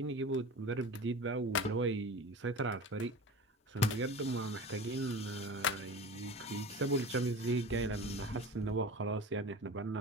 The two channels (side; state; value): both; normal; correlation 0.34